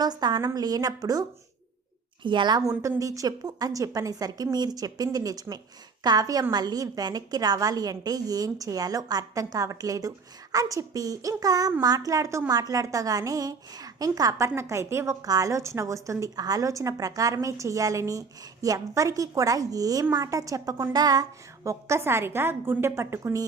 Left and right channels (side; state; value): left; quieter; 4.9 dB